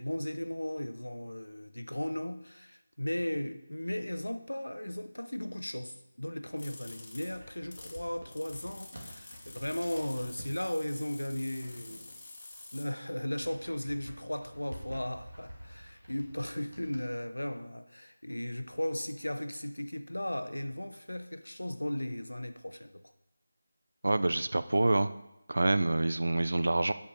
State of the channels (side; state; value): both; inverted; correlation -0.98